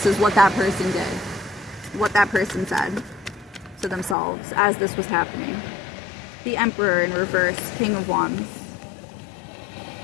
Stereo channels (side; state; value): right; drops out; at 4.2 s